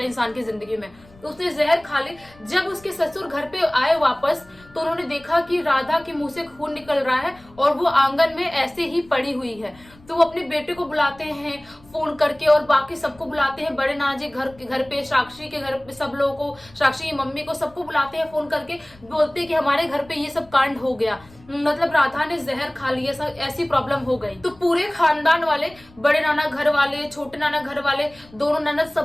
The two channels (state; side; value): noise; left; rumble, 25 dB below the sound